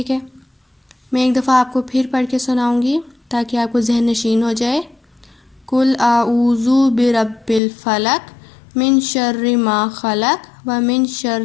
ہے؟ میں ایک دفعہ آپ کو پھر پڑھ کے سناؤں گی تاکہ آپ کو ذہن نشین ہو جائے۔ قل اعوذ برب الفلق من شر ما خلق ومن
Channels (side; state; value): right; drops out; at 7.6 s